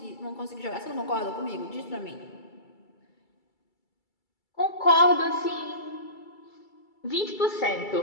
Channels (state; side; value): late; right; 2.3 ms